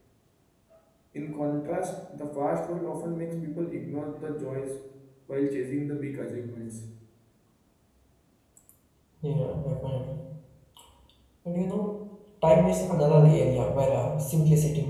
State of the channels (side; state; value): both; identical; correlation 1.00